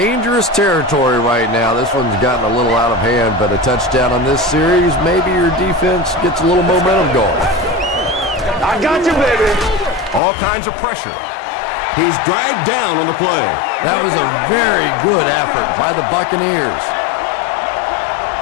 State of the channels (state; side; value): drops out; right; at 10.2 s